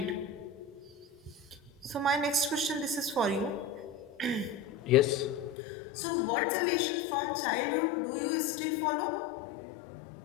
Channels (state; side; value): drops out; right; at 5.6 s